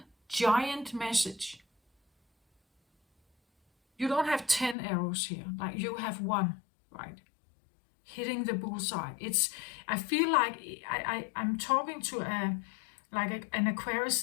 giant message. You don't have 10 arrows here, like you have one, right? Hitting the bullseye. I feel like I'm talking to an Aquarius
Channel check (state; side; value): drops out; right; at 4.8 s